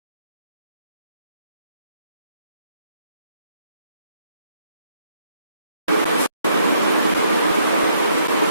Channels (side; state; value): both; inverted; correlation -0.71